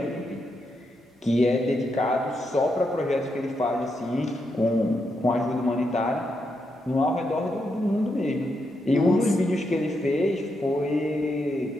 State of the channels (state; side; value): normal; both; correlation 0.82